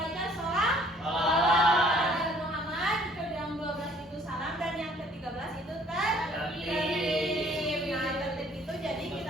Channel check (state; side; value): normal; both; correlation 0.58